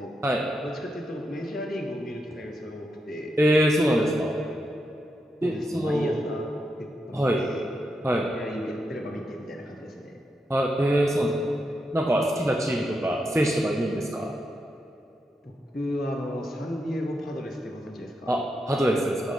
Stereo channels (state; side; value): normal; both; correlation 0.84